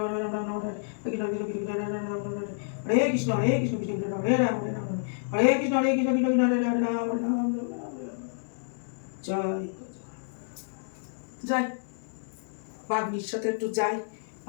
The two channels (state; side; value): silent; right; 58 dB below the other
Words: কৃষ্ণ কৃষ্ণ হরে রাম হরে রাম। জয় যাই, বাগনির সাথে একটু যাই,